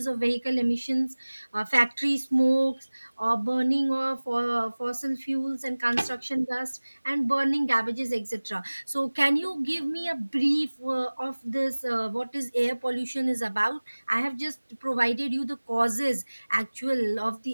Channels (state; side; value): inverted; both; correlation -1.00